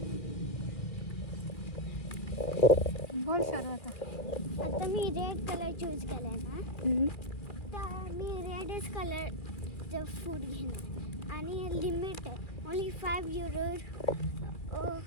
बोल शरू आता मी रेड कलर चूज केलाय ना, तर मी रेडच कलरचं फूड घेणार आणि लिमिट आहे ओन्ली €5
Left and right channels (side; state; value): right; late; 2.3 ms